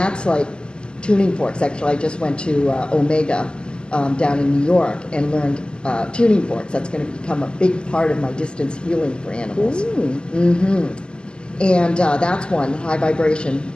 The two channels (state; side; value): late; right; 0.054 ms